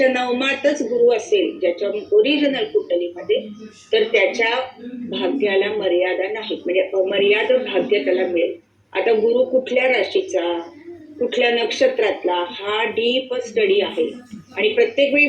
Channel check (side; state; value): both; identical; correlation 1.00